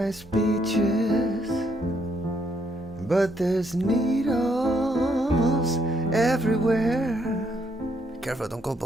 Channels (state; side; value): normal; both; correlation 0.73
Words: beaches, but there's needles everywhere. Be careful, don't go